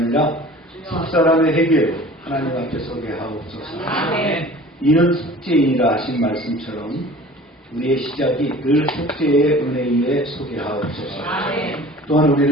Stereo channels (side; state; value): both; normal; correlation 0.44